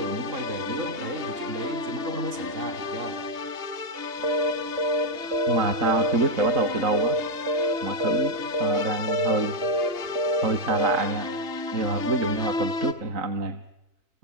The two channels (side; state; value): left; late; 2.8 ms